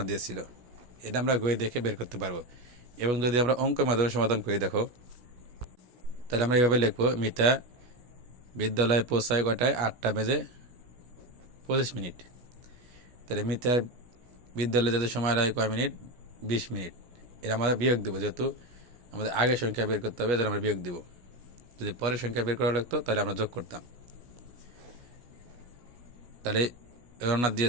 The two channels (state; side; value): late; left; 17 ms